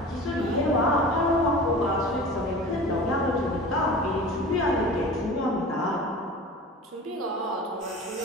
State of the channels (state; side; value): normal; both; correlation 0.37